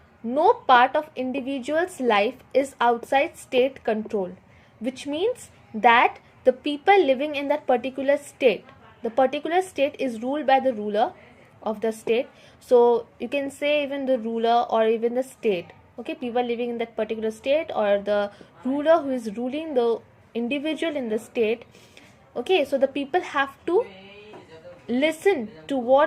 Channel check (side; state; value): both; identical; correlation 1.00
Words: no part of individual's life is outside state control, which means that the people living in that particular state, the particular state is ruled by the ruler of the state. So you can say even the ruler or even the state. Okay, people living in that particular state, or the ruler who is ruling the individual in the state. Okay, so the people have to listen to